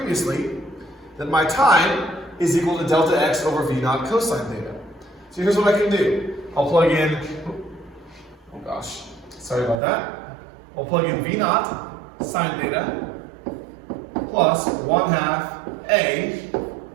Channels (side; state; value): left; drops out; at 9.8 s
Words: that my time is equal to delta x over v naught cosine theta. So here's what I can do. I'll plug in, oh gosh, sorry about that. I'll plug in v naught sine theta plus 1/2 a